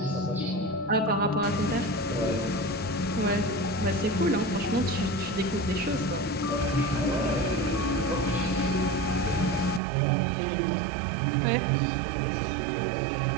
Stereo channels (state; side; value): drops out; left; at 9.8 s